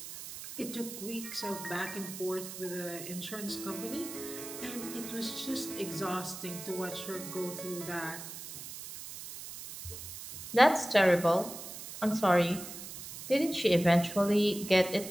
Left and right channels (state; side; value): noise; right; hiss, 11 dB below the sound